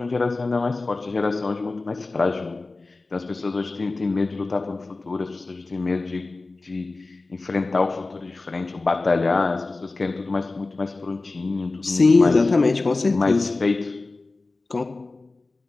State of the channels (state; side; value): quieter; right; 3.4 dB